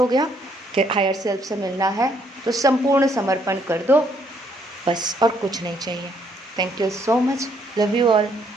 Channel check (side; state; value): both; normal; correlation 0.69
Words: गया कि हायर सेल्फ से मिलना है तो संपूर्ण समर्पण कर दो, बस, और कुछ नहीं चाहिए। Thank you so much, love you all,